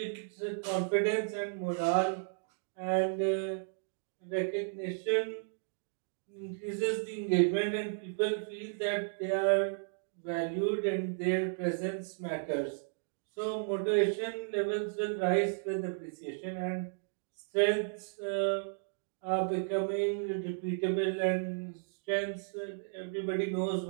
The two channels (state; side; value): silent; left; digital silence